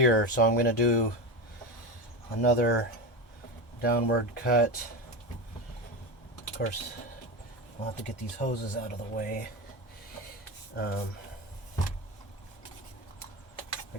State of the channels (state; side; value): normal; both; correlation 0.21